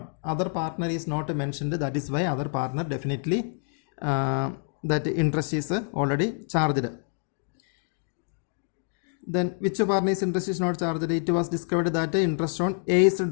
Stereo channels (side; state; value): right; silent; digital silence